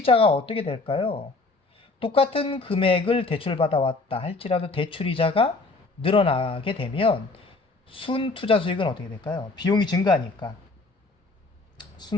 어떻게 될까요? 똑같은 금액을 대출받아왔다 할지라도 대출이자가 늘어나게 되면 순투자 수익은 어떻게 될까요? 비용이 증가하니까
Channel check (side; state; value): right; quieter; 3.5 dB